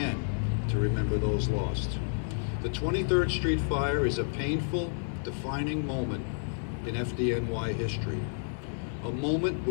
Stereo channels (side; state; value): right; silent; 58 dB below the other